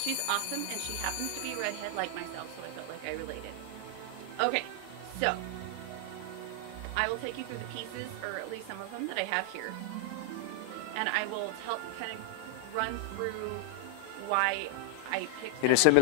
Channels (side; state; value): both; different; correlation 0.00